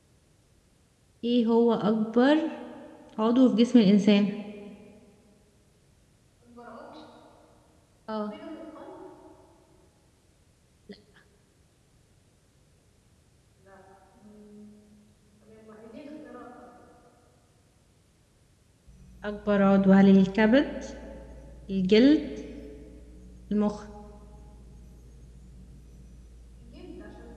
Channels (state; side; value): identical; both; correlation 1.00